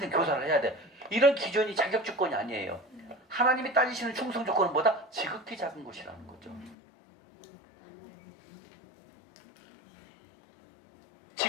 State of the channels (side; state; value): right; drops out; at 6.8 s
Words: 교사를 해야 돼. 이런 기준이 자격 조건이 아니에요. 하나님이 따지시는 충성 조건은 뭐다? 지극히 작은 것이라는 거죠.